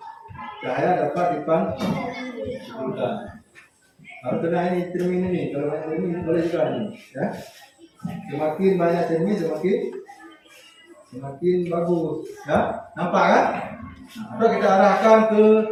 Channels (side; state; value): both; identical; correlation 1.00